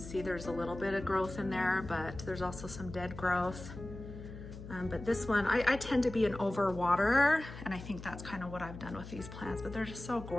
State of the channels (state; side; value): noise; left; hum, 12 dB below the sound